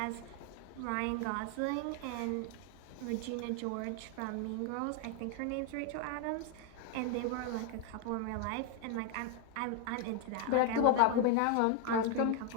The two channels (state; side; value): different; both; correlation 0.01